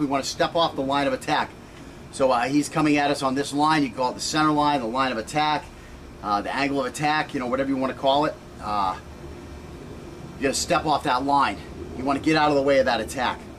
want to step off the line of attack. So he's coming at us on this line. You can call it the center line, the line of attack, the angle of attack, you know, whatever you want to call it. You got to step off that line. You want to get out of the way of that attack.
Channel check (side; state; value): both; identical; correlation 1.00